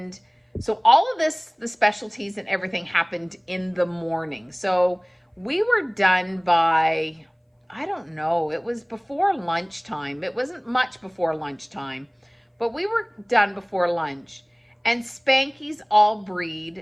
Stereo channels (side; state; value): both; identical; correlation 1.00